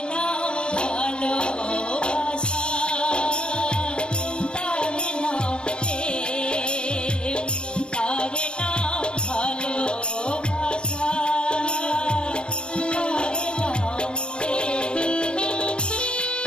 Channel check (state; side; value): late; right; 0.055 ms